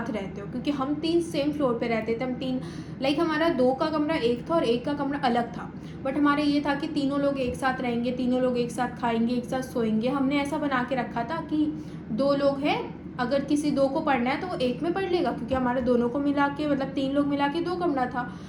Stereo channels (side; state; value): both; identical; correlation 1.00